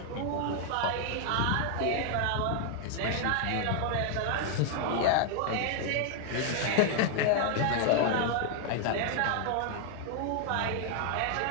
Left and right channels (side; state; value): both; different; correlation 0.00